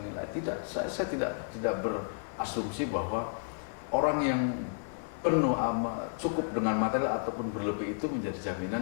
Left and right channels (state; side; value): silent; right; digital silence